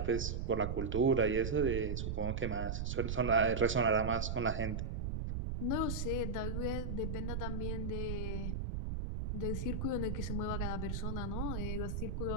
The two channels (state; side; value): noise; right; rumble, 2 dB below the sound